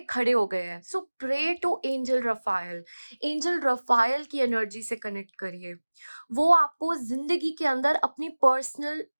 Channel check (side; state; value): both; inverted; correlation -1.00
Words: खड़े हो गए हैं। So pray to angel Raphael. Angel Raphael की एनर्जी से कनेक्ट करिए, वो आपको जिंदगी के अंदर अपनी पर्सनल